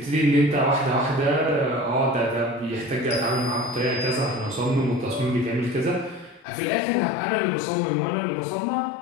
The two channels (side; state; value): right; drops out; at 6.5 s